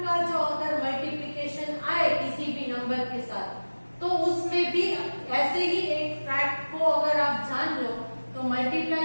का जो अगर मल्टीप्लिकेशन आए किसी भी नंबर के साथ तो उसमें भी ऐसे ही एक फैक्ट को अगर आप जान लो तो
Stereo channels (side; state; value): both; inverted; correlation -1.00